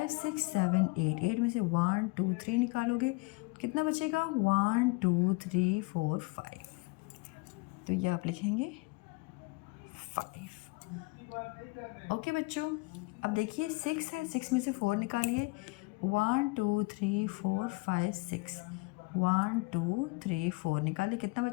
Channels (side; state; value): right; quieter; 26.3 dB